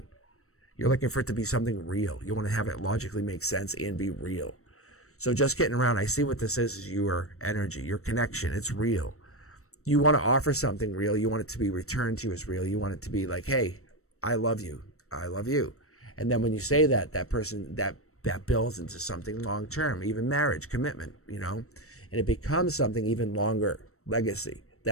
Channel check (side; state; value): right; late; 0.64 ms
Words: You're looking for it to be something real. You want to have it logically make sense and be real. So just getting around, I see what this is your energy, your connection. It's real. You want to offer something real. You want it to be returned to you as real. You want it to be like, hey, I love you. I love you. And then when you say that, that person, that builds into something long-term, even marriage, commitment, you know, and it becomes something even longer, legacy.